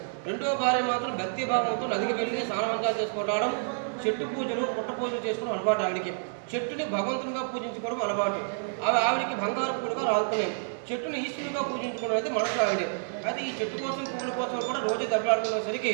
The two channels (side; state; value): left; silent; digital silence